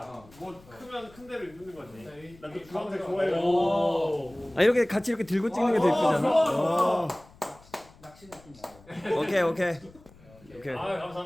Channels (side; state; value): left; noise; rumble, 25 dB below the sound